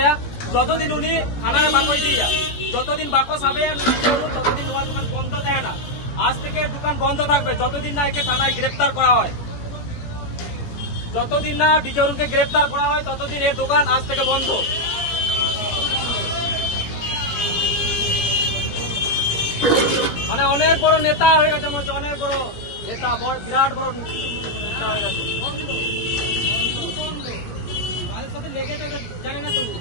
যতদিন উনি থানারে বাকস দিয়ে যতদিন বাকস হবে ততদিন ওনার দোকান বন্ধ থাকে না। আজ থেকে দোকান বন্ধ থাকবে যতদিন না একে থানায় গ্রেপ্তার করা হয়, যতদিন না ডিজে অরুণকে গ্রেপ্তার করা হয় ততদিন এর দোকান আজ থেকে বন্ধ। মানে অনেক বড় নেতা হয়ে গেছে, অনেক বড় নেতা, বিরাট বড় নেতা হয়ে গেছে।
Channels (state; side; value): late; right; 17 ms